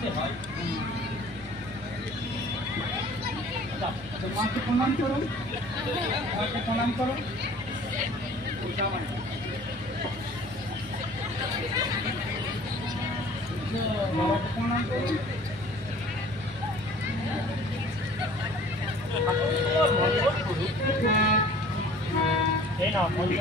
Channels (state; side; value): normal; both; correlation 0.49